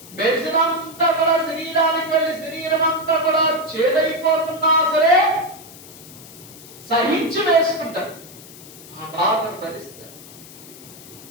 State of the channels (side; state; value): left; noise; hiss, 18 dB below the sound